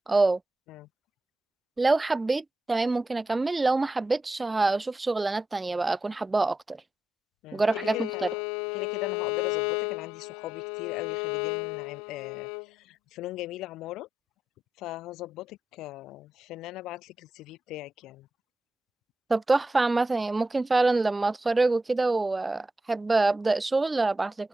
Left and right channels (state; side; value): normal; both; correlation 0.87